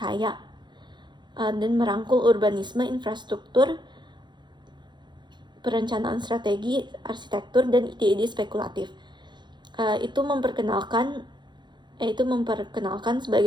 dan merangkul urbanisme, infrastruktur, perencanaan strategi, arsitektur, dan ide-ide spekulatif. Itu memperkenalkan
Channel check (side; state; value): left; late; 0.22 ms